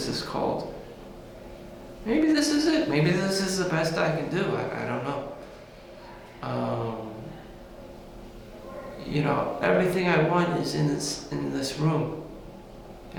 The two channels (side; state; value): both; identical; correlation 1.00